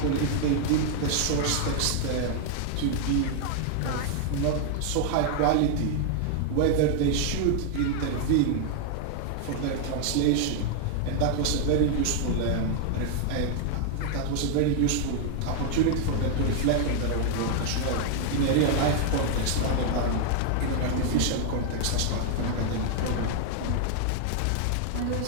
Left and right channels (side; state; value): both; different; correlation 0.00